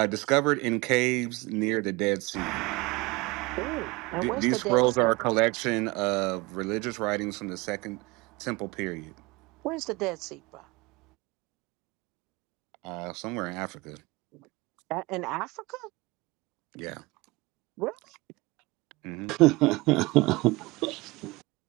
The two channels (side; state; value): left; quieter; 23.3 dB